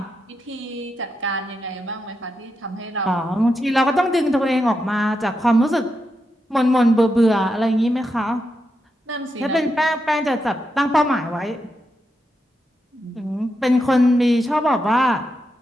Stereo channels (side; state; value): both; normal; correlation 0.85